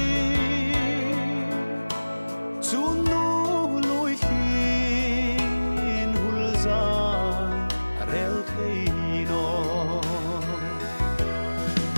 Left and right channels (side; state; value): both; inverted; correlation -1.00